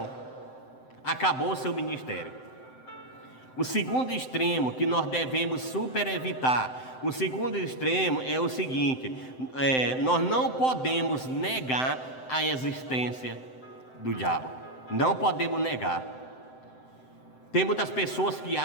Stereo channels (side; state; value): right; late; 7.8 ms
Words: acabou o seu ministério. O segundo extremo que nós devemos super evitar, o segundo extremo é o seguinte: nós não podemos negar a existência do diabo. Não podemos negar. Tem muitas pessoas que